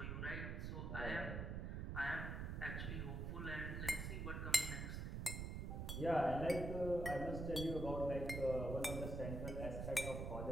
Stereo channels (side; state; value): right; noise; rumble, 3 dB below the sound